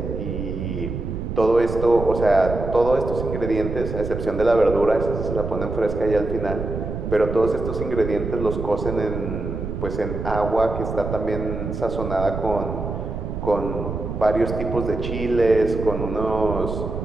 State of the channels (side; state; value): right; noise; rumble, 5 dB below the sound